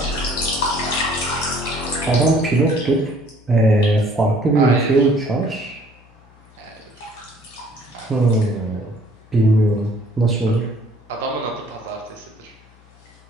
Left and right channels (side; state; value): left; noise; hum, 27 dB below the sound